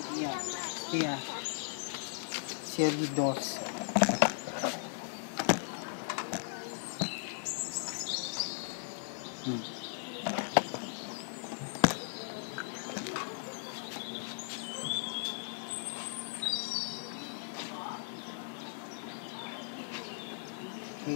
Iya. Iya. Serie 2. Hmm.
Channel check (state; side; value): silent; right; digital silence